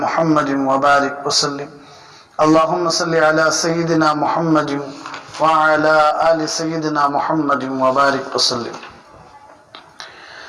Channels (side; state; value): both; identical; correlation 1.00